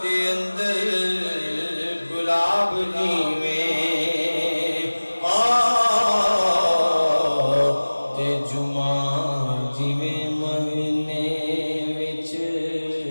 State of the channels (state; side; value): inverted; both; correlation -1.00